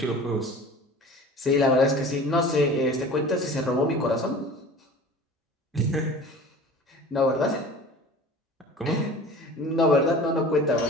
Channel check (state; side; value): normal; both; correlation 0.41